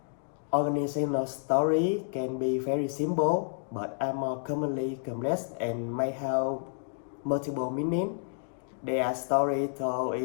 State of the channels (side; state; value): right; silent; digital silence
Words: organizational story can be very simple but are more commonly complex and may have multiple meanings. They are stories told